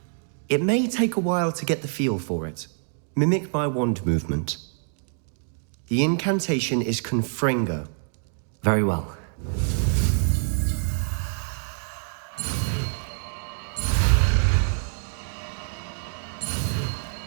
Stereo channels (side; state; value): left; silent; digital silence